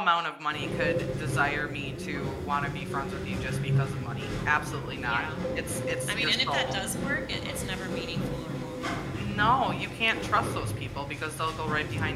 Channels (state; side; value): identical; both; correlation 1.00